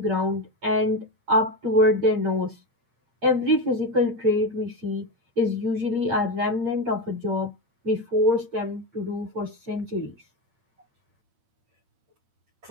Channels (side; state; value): left; late; 8.6 ms